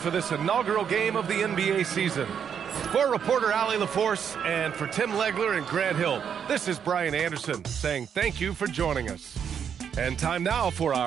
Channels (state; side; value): quieter; left; 7.8 dB